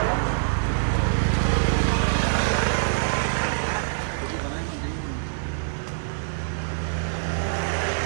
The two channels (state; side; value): silent; left; 59 dB below the other